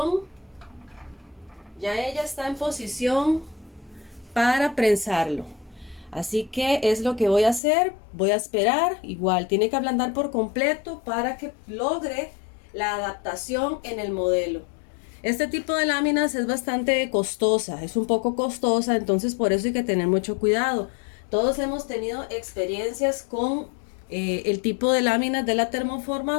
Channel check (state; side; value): drops out; right; at 7.6 s